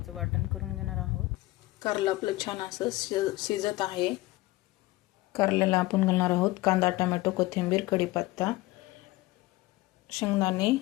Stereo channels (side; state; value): right; quieter; 19.3 dB